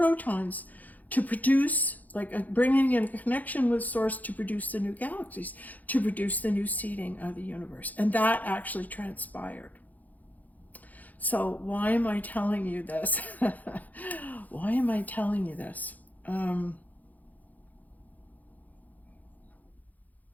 to produce, bringing in a connection with source to produce the new galaxies, to produce the new seeding of the universe. And that actually transpired. So why am I telling you this? Why am I telling you this?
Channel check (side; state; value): right; late; 0.080 ms